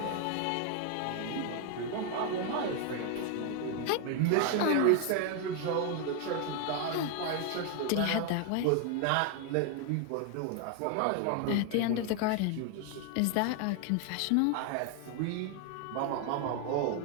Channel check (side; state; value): both; different; correlation 0.01